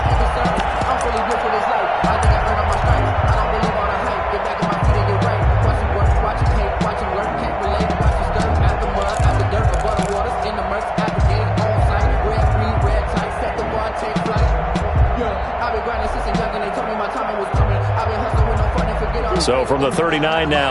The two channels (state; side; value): identical; both; correlation 1.00